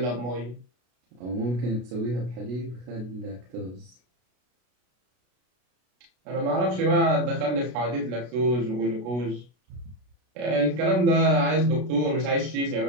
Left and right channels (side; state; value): left; late; 33 ms